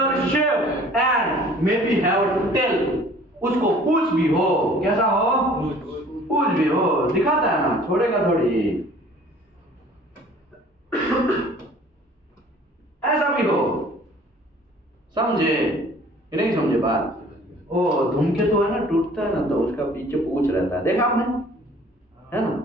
shape and may be have tail, उसको पूछ भी हो, कैसा हो? पूछ भी हो, दिखाता है ना, छोड़ेगा थोड़ी, ऐसा भी हो, समझे कि नहीं समझे बात? ओ धूमकेतु है ना, टूटता है ना तो उसका पीछे पूछ रहता है, देखा आपने? है ना,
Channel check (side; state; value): both; normal; correlation 0.51